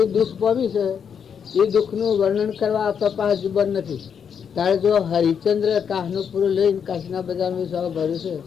એ દુઃખ પામી છે. એ દુઃખનું વર્ણન કરવા આપણા પાસે જુબાન નથી. તારે જો હરિચંદ્ર કાશનો પૂરો લઈને કાશીના બજારમાં સવા ભર્યું છે.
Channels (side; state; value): right; quieter; 7.3 dB